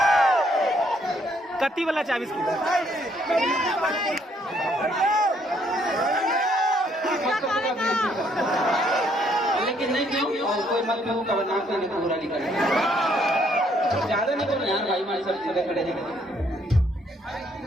कत्ती वाला 24 की लेकिन नहीं क्यों और कोई मत क्यों कब नाम करने को बुरा निकल ज्यादा नहीं करो यार भाई हमारे सब जगह खड़े हैं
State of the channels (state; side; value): normal; both; correlation 0.68